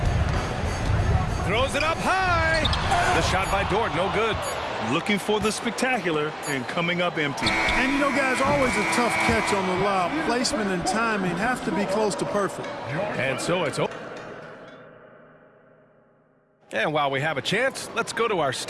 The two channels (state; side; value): identical; both; correlation 1.00